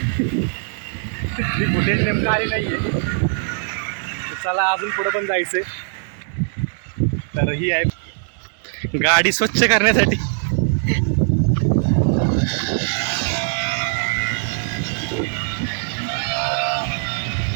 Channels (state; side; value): silent; left; digital silence